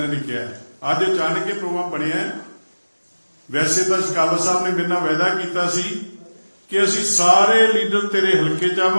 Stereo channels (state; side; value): inverted; both; correlation -1.00